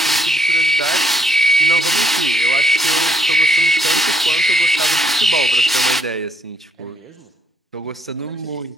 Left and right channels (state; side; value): normal; both; correlation 0.71